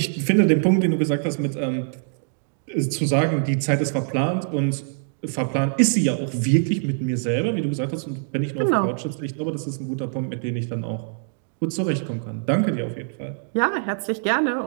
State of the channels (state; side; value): silent; left; digital silence